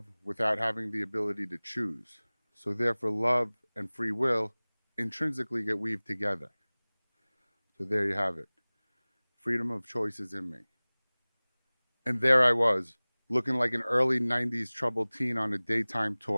without having the ability to choose. So therefore, love and free will intrinsically get weaved together. So there you have it. Freedom of choice is in me. And there I was, looking like an early 90s troubled teen on a daytime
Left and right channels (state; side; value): inverted; both; correlation -1.00